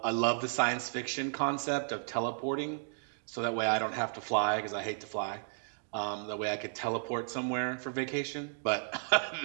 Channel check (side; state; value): left; silent; digital silence